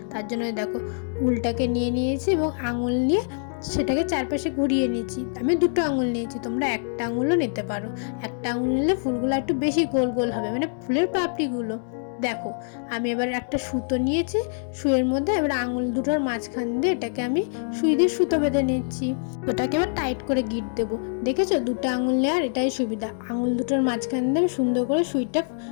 তার জন্য দেখো, উলটাকে নিয়ে নিয়েছি এবং আঙুল নিয়ে সেটাকে চারপাশে ঘুরিয়ে নিয়েছি। আমি দুটো আঙুল নিয়েছি, তোমরা একটা আঙুলও নিতে পারো। একটা আঙুল নিলে ফুলগুলো একটু বেশি গোল গোল হবে, মানে ফুলের পাপড়িগুলো। দেখো, আমি এবার একটা সুতো নিয়েছি, সুইয়ের মধ্যে এবার আঙুল দুটোর মাঝখান দিয়ে এটাকে আমি সুই দিয়ে সুতো বেঁধে নিচ্ছি। ওটাকে এবার টাইট করে গিট দেবো। দেখেছো, দুটো আঙুল নেওয়ার এটাই সুবিধা, আঙুল দুটোর মাঝখান দিয়ে আমি সুন্দর করে সুইটা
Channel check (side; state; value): right; silent; digital silence